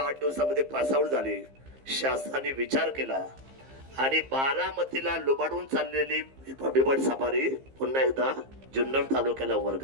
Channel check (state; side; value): late; left; 15 ms